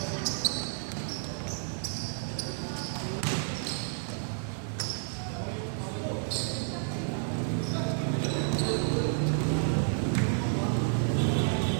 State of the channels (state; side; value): silent; left; digital silence